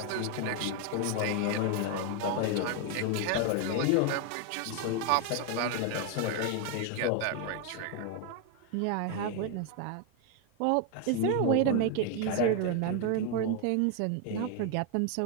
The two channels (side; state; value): both; different; correlation 0.01